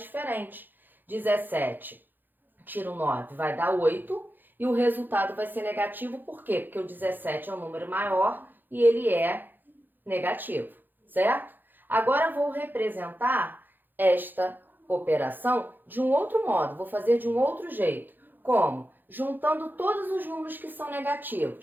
diferentes. 17 tiro 9 vai dar 8 e o resultado vai ser negativo. Por quê? Porque o 17 é um número maior e ele é negativo, certo? Agora vou representar esta operação de um outro modo, vou fazer de um outro jeito. Como? Juntando todos os números que são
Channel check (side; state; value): left; late; 0.090 ms